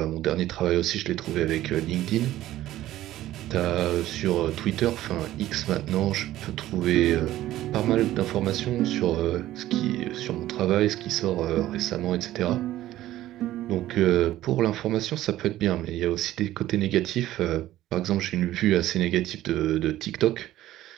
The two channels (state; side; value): quieter; left; 14.5 dB